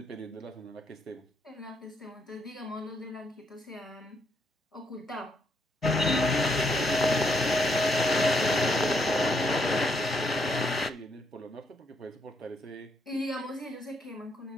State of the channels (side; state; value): both; normal; correlation 0.75